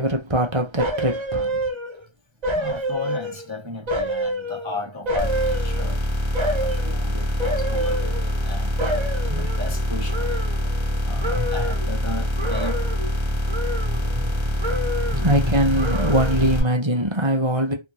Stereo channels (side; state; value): left; late; 1.3 ms